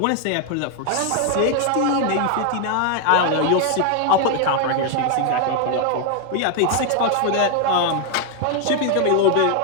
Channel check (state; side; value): different; both; correlation 0.00